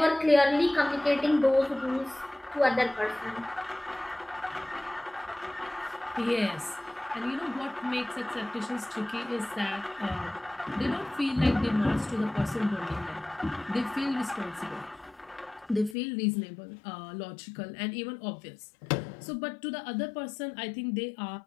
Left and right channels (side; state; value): right; drops out; at 16.0 s